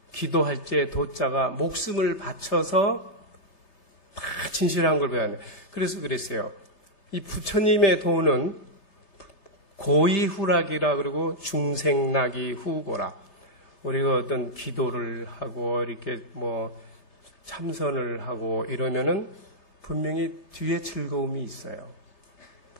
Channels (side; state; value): right; late; 3.3 ms